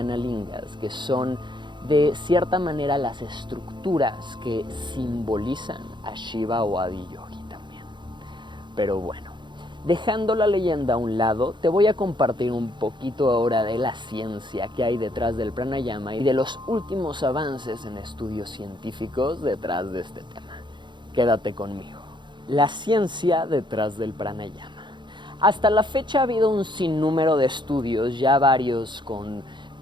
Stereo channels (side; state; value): left; late; 0.23 ms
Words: lingas, que son de cierta manera las estructuras que simbolizan a Shiva o a Adiyogi también. Pero bueno, dejando la leyenda a un lado, te voy a compartir un poquito ahora de la ciencia que hay detrás del pranayama y de los últimos avances en estudios científicos detrás de este tema. Quédate conmigo. La ciencia detrás del pranayama. Hasta la fecha ha habido un sinnúmero de estudios, ya varios con